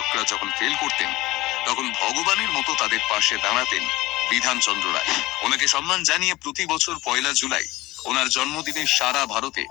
যখন ফেল করতেন, তখন ভগবানের মতো তাদের পাশে দাঁড়াতেন বিধানচন্দ্র রায়। ওনাকে সম্মান জানিয়ে প্রতি বছর 1 জুলাই ওনার জন্মদিনে সারা ভারতে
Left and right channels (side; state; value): right; quieter; 18.7 dB